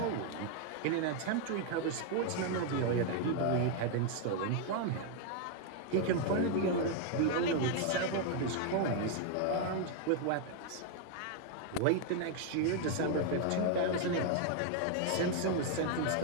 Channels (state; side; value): different; both; correlation 0.00